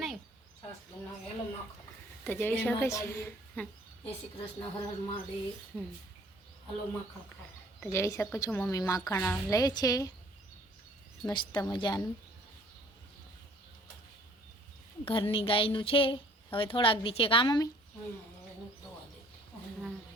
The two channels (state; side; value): normal; both; correlation 0.57